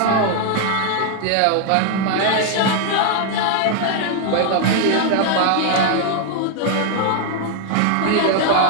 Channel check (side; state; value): both; different; correlation 0.00